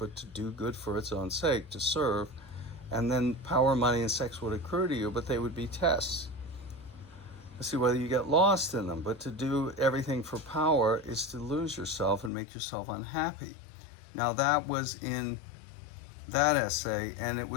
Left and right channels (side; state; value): right; drops out; at 12.3 s